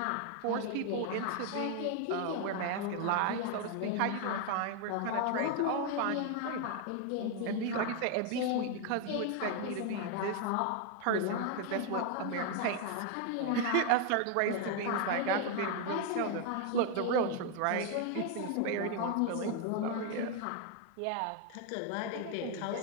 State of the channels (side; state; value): both; different; correlation 0.01